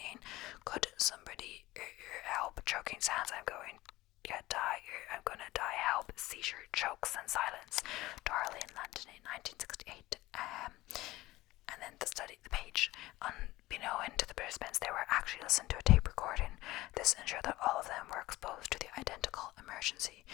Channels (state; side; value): quieter; right; 18.1 dB